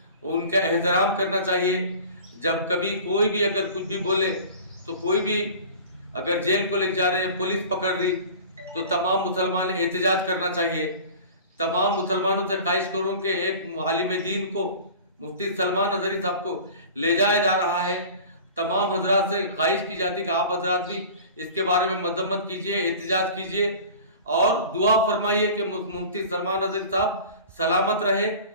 उनका एहतराम करना चाहिए। जब कभी कोई भी अगर कुछ भी बोले तो कोई भी अगर जेल को ले जा रहे हैं, पुलिस पकड़ रही, तो तमाम मुसलमान एहतजाज करना चाहिए। तमाम मुसलमानों से ख्वाहिश करूँ कि एक आलिम दीन को, मुफ्ती सलमान अजहरी साहब को ले जाया जा रहा है, तमाम हजरात से ख्वाहिश की जाती कि आप हजरात भी इसके बारे में मजम्मत कीजिए, एहतजाज कीजिए और दुआ फरमाइए कि मुफ्ती सलमान अजहरी साहब सलामत रहे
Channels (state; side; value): inverted; both; correlation -0.40